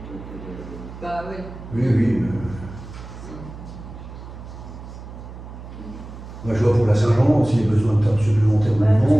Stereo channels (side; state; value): right; noise; hum, 13 dB below the sound